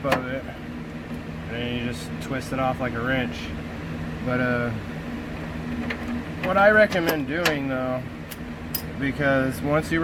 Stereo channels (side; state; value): both; identical; correlation 1.00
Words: of it, and then you just twist it off like a wrench. But what I recommend doing though, because once you